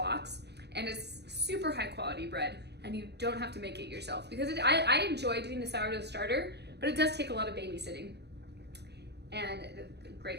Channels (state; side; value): late; left; 0.49 ms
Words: and it's super high quality bread, and you don't have to make it yourself. Because I enjoy doing the sourdough starter, but it does take a lot of babysitting. And